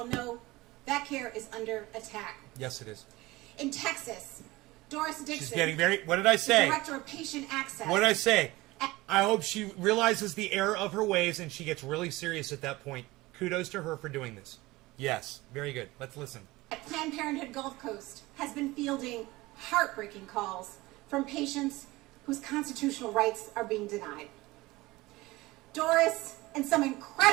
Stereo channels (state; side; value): quieter; left; 20.3 dB